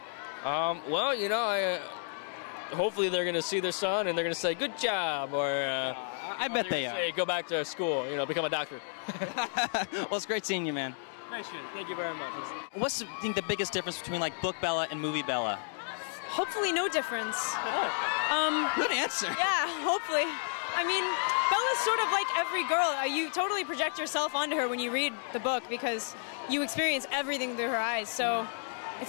Hopefully they're going to see their son and they're going to say, "Good job," or I bet they are. Say, "Go back to school, become a doctor." Well, it's great seeing you, man. Nice. Thank you very much. What's the biggest difference between like book Bella and movie Bella? Hopefully, no difference. Good answer. Yeah, hopefully. Bella's sort of like every girl. You totally project yourself onto her when you read the book because you experience everything through her eyes. So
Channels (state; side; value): silent; right; digital silence